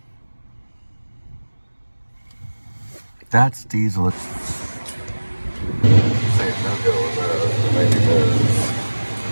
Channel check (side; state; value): both; inverted; correlation -1.00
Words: That's diesel. Say no go with those, but maybe those.